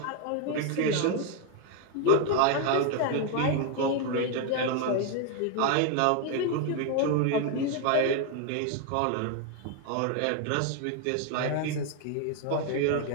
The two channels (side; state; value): both; different; correlation 0.01